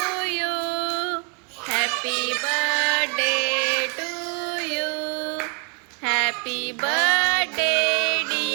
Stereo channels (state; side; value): quieter; left; 36.5 dB